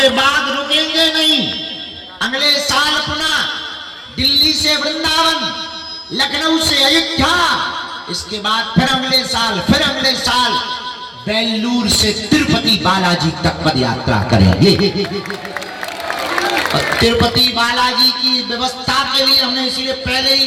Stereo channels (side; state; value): both; identical; correlation 1.00